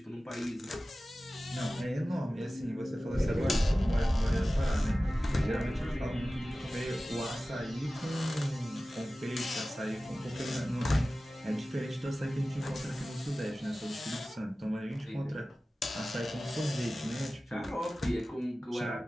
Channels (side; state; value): both; normal; correlation 0.96